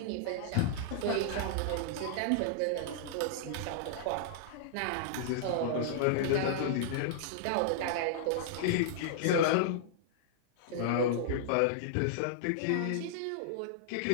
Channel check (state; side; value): different; both; correlation -0.01